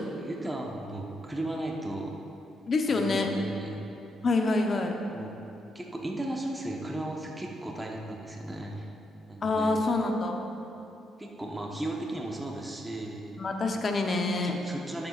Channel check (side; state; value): both; normal; correlation 0.80